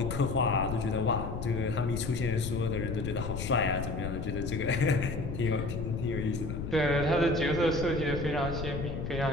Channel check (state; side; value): noise; left; rumble, 5 dB below the sound